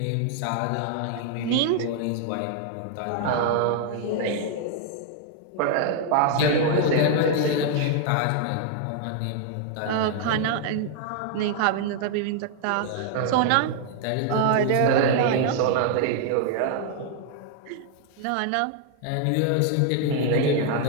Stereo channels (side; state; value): both; different; correlation 0.00